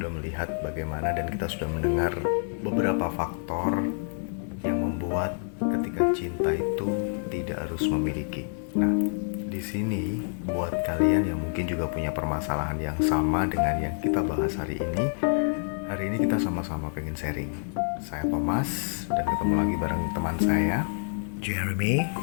melihat bagaimana dan kita sudah mendengar beberapa faktor yang membuat ketika cinta itu tidak harus memiliki. Nah, di sini buat kalian yang mungkin juga punya permasalahan yang sama dengan yang kita bahas hari ini kita sama-sama pengen sharing. Saya Thomas dan ketemu lagi bareng teman saya Jeremy,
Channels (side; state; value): right; silent; 60 dB below the other